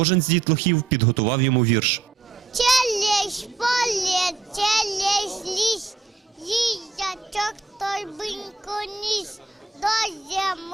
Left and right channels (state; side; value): quieter; left; 4.4 dB